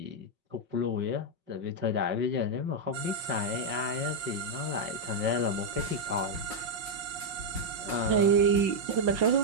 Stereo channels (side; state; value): left; late; 5.5 ms